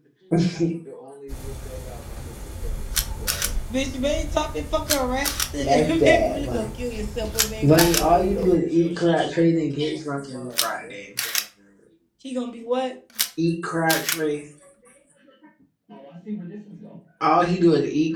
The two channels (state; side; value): identical; both; correlation 1.00